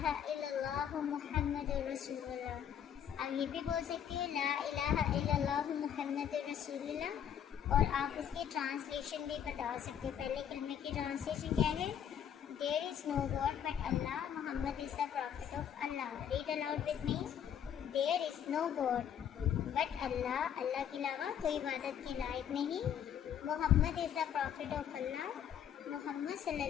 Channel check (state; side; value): quieter; right; 9.1 dB